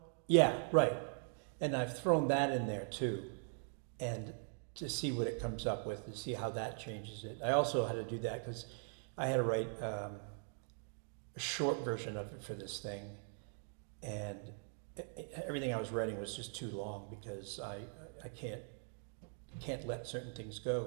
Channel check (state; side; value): silent; left; 50 dB below the other